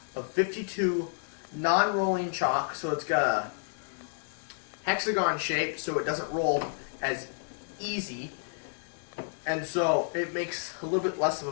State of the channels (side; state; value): right; silent; digital silence